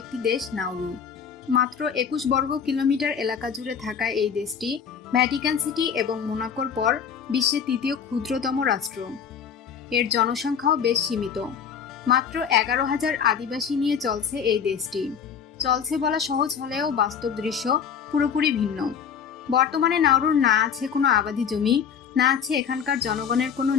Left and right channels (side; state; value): right; quieter; 7.3 dB